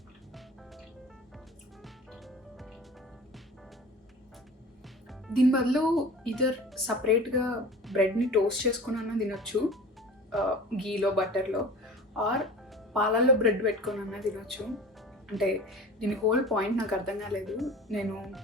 దీని బదులు ఇదర్ సపరేట్గా బ్రెడ్ని టోస్ట్ చేసుకుని అన్న తినొచ్చు, గీలో బటర్లో, ఆర్ పాలల్లో బ్రెడ్ పెట్టుకొని అన్న తినొచ్చు. అంటే దీని హోల్ పాయింట్ నాకు అర్థం కాలేదు. నేను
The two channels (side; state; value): both; normal; correlation 0.38